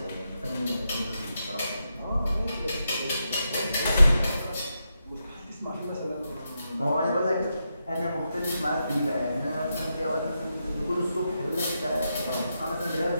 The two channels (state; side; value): inverted; both; correlation -0.85